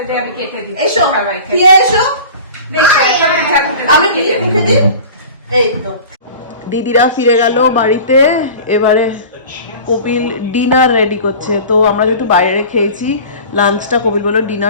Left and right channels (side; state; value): both; inverted; correlation -0.39